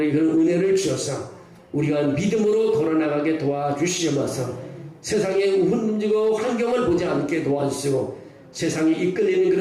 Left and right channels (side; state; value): both; identical; correlation 1.00